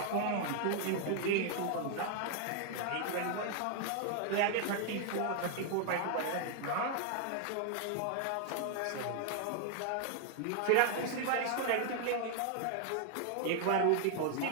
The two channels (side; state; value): both; different; correlation 0.00